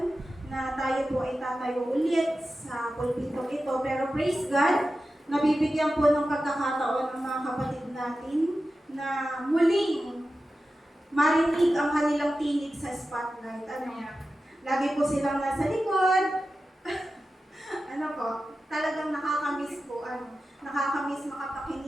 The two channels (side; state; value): both; normal; correlation 0.93